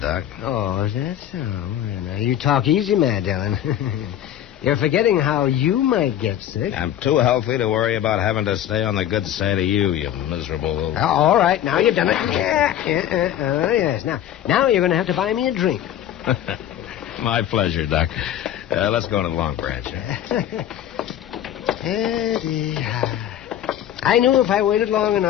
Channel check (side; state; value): right; quieter; 11.1 dB